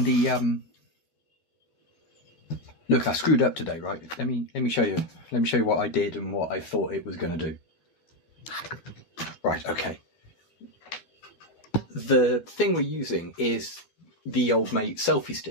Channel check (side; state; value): right; late; 12 ms